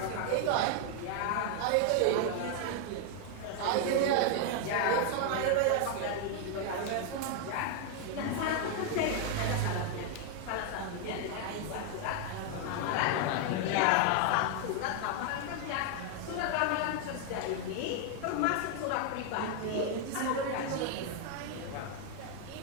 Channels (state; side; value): different; both; correlation 0.01